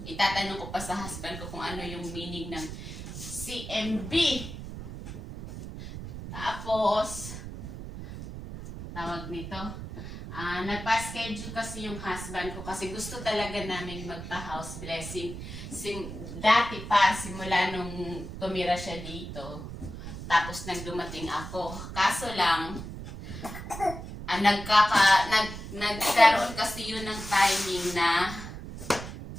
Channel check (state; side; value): noise; right; rumble, 9 dB below the sound